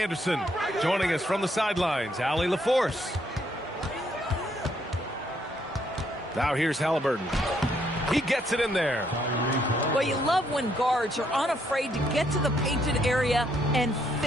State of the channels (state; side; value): normal; both; correlation 0.72